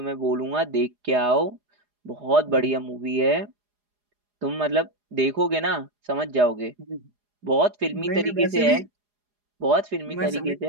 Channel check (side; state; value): left; late; 4.8 ms